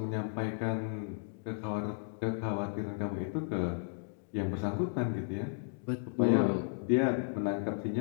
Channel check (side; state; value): right; silent; digital silence